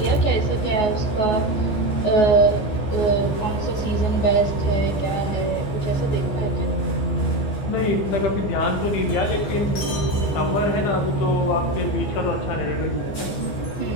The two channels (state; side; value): late; right; 15 ms